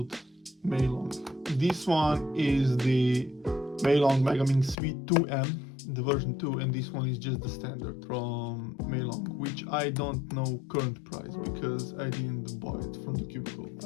MeiLong. This one is the MeiLong Milong V2M, the version 2, and this one is just the standard from MeiLong, which I don't know current price because I didn't buy it from the cubicle.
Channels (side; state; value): right; drops out; at 4.8 s